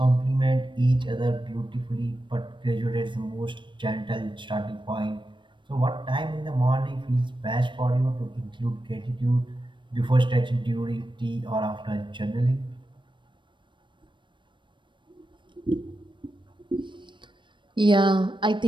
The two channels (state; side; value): late; left; 0.23 ms